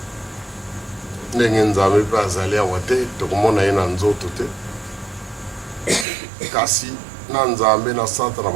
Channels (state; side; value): drops out; left; at 6.1 s